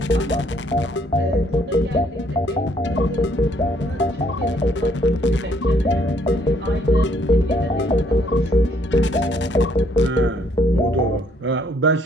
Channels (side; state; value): both; normal; correlation 0.66